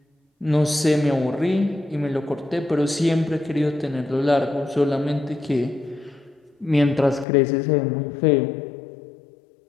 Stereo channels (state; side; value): drops out; right; at 7.2 s